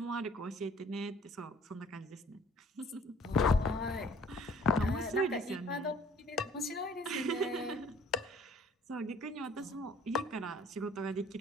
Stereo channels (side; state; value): both; normal; correlation 0.55